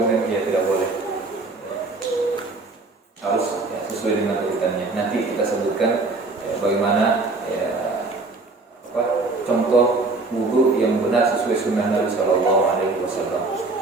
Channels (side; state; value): left; quieter; 3.5 dB